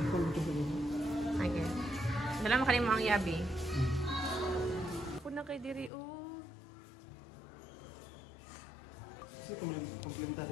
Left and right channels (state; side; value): drops out; right; at 5.9 s